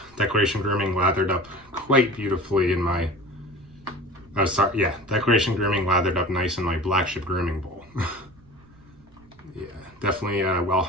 Declaration Grooming lathered up quite beautifully in my, oh sorry, yeah, Declaration Grooming lathered up nice in my black chip grooming bowl. Yeah, definitely well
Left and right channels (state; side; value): noise; right; rumble, 27 dB below the sound